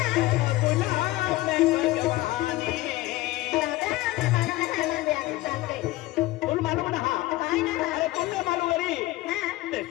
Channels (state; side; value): quieter; right; 18.2 dB